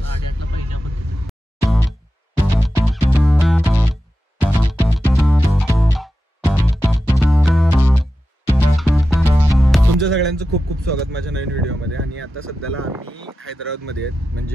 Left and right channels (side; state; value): both; normal; correlation 0.92